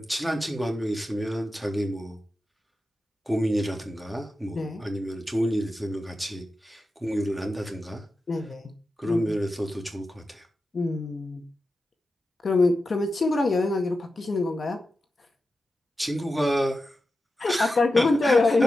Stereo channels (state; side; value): normal; both; correlation 0.91